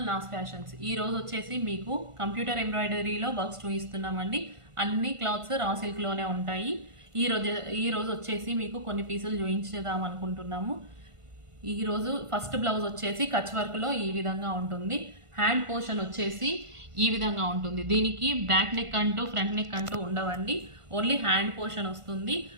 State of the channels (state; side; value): late; left; 1.5 ms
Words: Naa's fashions. ఈ రోజు వచ్చేసి మీకు కంప్యూటర్ ఎంబ్రాయిడరీలో వర్క్స్ చూపిస్తున్నామండి. అన్ని క్లాత్స్ రా సిల్క్లోనే ఉంటాయి. ఈ రోజు వచ్చేసి మీకు కొన్ని పీసులు చూపించేద్దాం అనుకుంటున్నాము. ఈరోజు ఫస్ట్ బ్లౌజ్ వచ్చేసి కచ్ వర్క్లో ఈ విధంగా ఉంటుంది. హ్యాండ్ పోర్షన్ వచ్చేసి ఈ విధంగా ఉంటుంది. దీనికి బ్యాక్ నెక్ అంటూ ఫ్రంట్ నెక్ అంటూ ఉండవండి, ఓన్లీ హ్యాండ్ పోర్షన్ వస్తుంది.